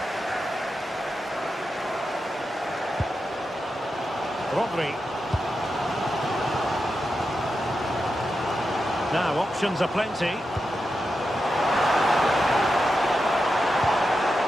Rodri. Now, options are plenty.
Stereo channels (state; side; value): normal; both; correlation 0.89